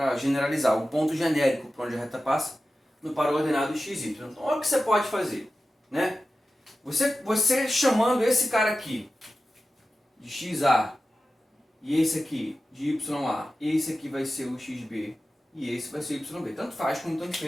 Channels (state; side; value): normal; both; correlation 0.94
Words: generalizar, o ponto genérico por onde a reta passa no par ordenado XY. Então, olha o que você pode fazer, né? Você chamando esse cara aqui de XA e esse aqui de YA, esse aqui vai ser o XB e esse vai ser o YB. Tanto faz como tanto